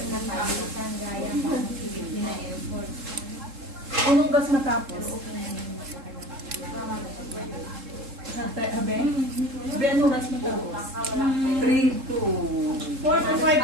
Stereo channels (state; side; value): late; left; 3.7 ms